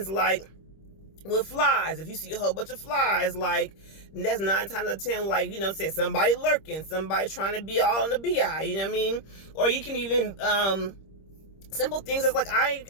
like with flies, if you see a whole bunch of flies, like, that's 9 times out of 10, like, you know, say somebody lurking, somebody trying to be all in the BI, you know what I mean? Or you can even simple things as like, I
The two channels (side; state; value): right; late; 26 ms